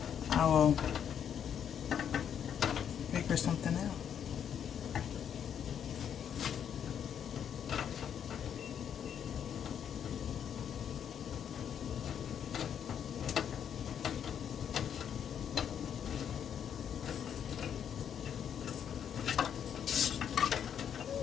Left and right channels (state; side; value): quieter; right; 8.6 dB